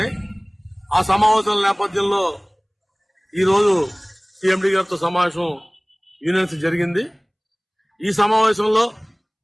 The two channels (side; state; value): both; identical; correlation 1.00